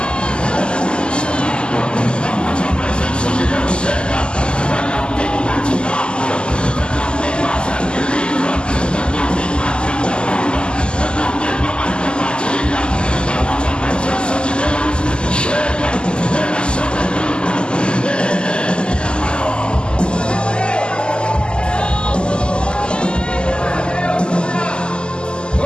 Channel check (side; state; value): right; late; 0.049 ms